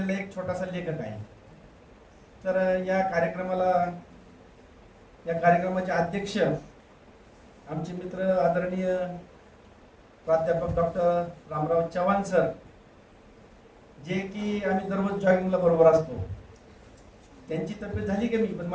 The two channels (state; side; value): identical; both; correlation 1.00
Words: एक छोटासा लेखक आहे. तर या कार्यक्रमाचे अध्यक्ष आमचे मित्र आदरणीय प्राध्यापक डॉक्टर रामराव चव्हाण सर, जे की आम्ही दररोज जॉगिंगला बरोबर असतो. त्यांची तब्येत झाली कमी, पण